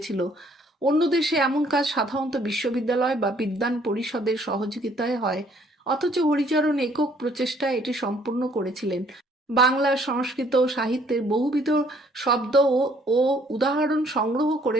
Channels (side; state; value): both; normal; correlation 0.62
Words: অন্য দেশে এমন কাজ সাধারণত বিশ্ববিদ্যালয় বা বিদ্বান পরিষদের সহযোগিতায় হয়, অথচ হরিচরণ একক প্রচেষ্টায় এটি সম্পূর্ণ করেছিলেন। বাংলা, সংস্কৃত ও সাহিত্যের বহুবিধ শব্দ ও উদাহরণ সংগ্রহ